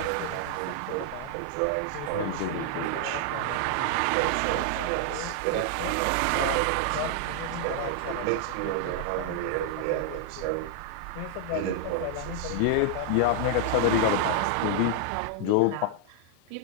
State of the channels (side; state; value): both; different; correlation 0.00